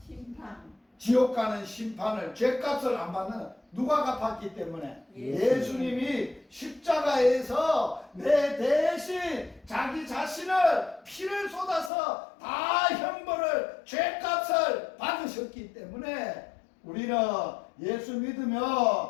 심판. 지옥 가는 심판을, 죄값을 안 받는, 누가 갚았기 때문에? 예수님이 십자가에서 내 대신 자기 자신을 피를 쏟아서 다 형벌을, 죄값을 받으셨기 때문에 우리는 예수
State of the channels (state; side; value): drops out; right; at 11.9 s